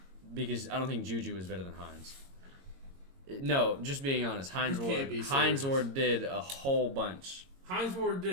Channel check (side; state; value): left; late; 22 ms